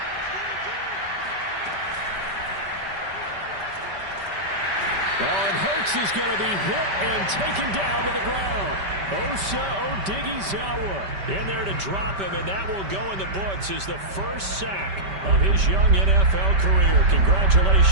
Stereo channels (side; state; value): left; late; 5.1 ms